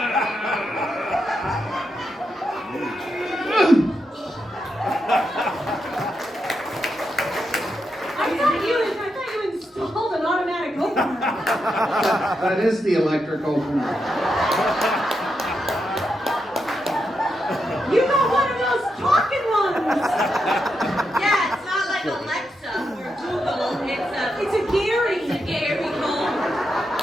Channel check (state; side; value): normal; both; correlation 0.84